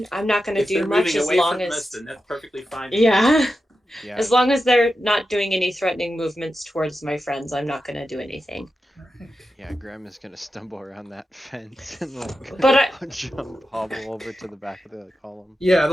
I'm not gonna If do they're much moving as away long from as us, then that's perfectly fine. yeah. Yeah. As long as they're not doing any threatening movements towards my friends, I'm not gonna do anything. Yeah, Graham is gonna stumble around that fence and like But jump, hobble over to the back of the column. Yeah,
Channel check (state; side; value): normal; both; correlation 0.90